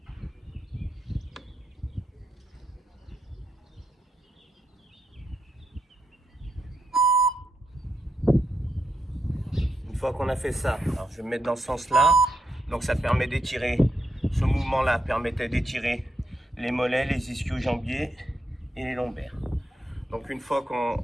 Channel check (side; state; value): both; normal; correlation 0.82